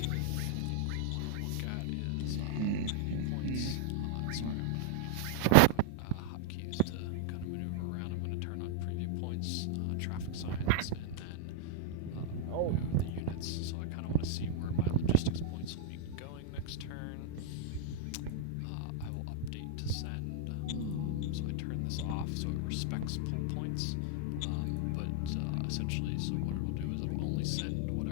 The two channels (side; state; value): both; different; correlation -0.01